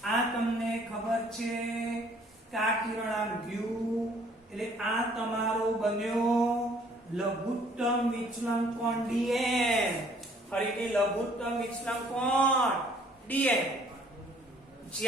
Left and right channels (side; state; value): both; normal; correlation 0.59